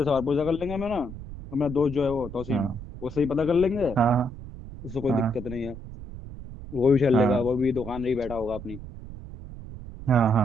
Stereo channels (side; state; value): right; noise; rumble, 12 dB below the sound